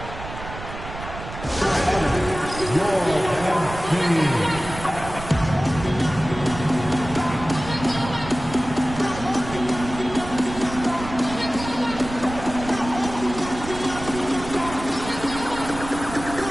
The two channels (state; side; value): noise; right; rumble, 11 dB below the sound